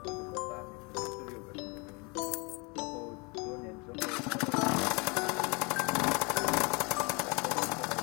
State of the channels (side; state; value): right; quieter; 29.9 dB